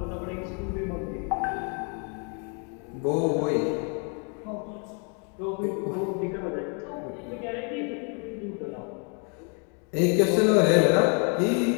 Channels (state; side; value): quieter; right; 37.7 dB